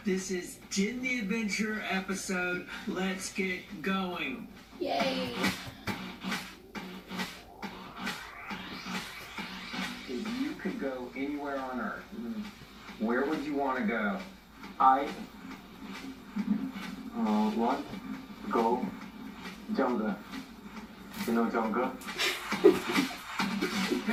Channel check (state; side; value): identical; both; correlation 1.00